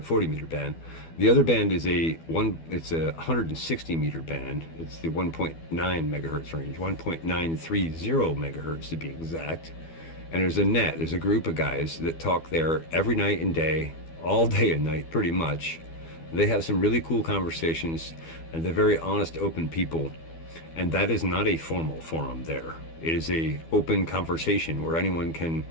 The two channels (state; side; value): late; right; 12 ms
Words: meter band. The other band is it's a 160 meter band. It's the 1.9 megahertz range, 1.930 megahertz to be exact. And there's a group of guys that talk there every night and day, all day and night pretty much. They have some really cool conversations, and they're very honest, open people. And that is not a formal forum there. It is a open conversation where anyone can,